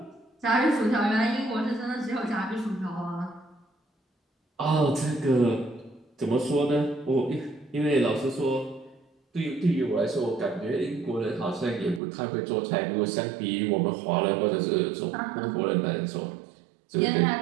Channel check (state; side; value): drops out; left; at 12.0 s